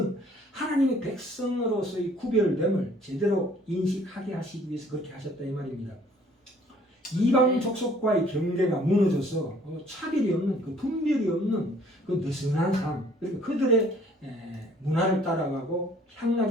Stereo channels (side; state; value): both; normal; correlation 0.57